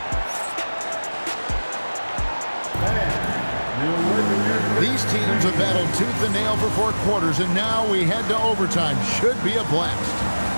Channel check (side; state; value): both; inverted; correlation -1.00